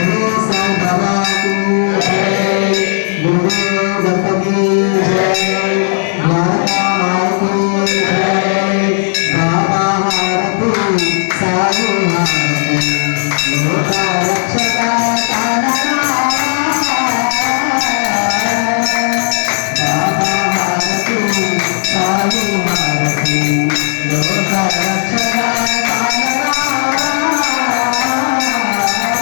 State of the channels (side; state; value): right; silent; digital silence